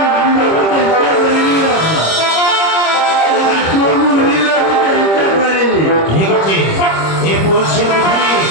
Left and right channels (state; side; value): late; right; 25 ms